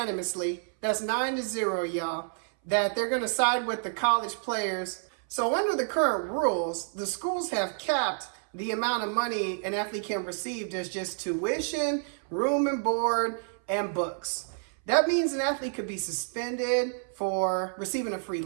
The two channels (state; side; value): silent; left; 59 dB below the other